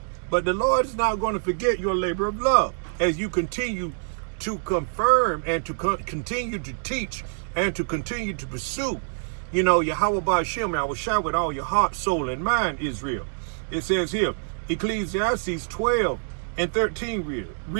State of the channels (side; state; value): left; silent; digital silence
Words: but the Lord is not going to forget your labor of love as you continue to confirm and to continue to teach and to continue to pursue. Yahweh Ba'ashem, I will shout with all your heart, soul, and mind, Israel. It says here, Ecclesiastes 12 and 13